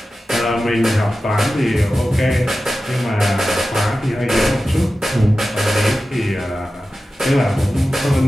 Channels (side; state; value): both; normal; correlation 0.94